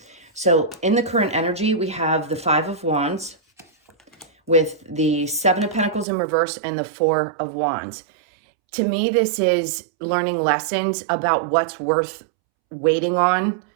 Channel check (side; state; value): left; drops out; at 6.1 s